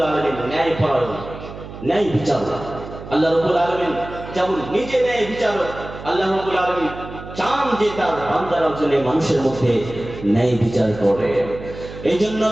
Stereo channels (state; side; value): noise; right; hum, 13 dB below the sound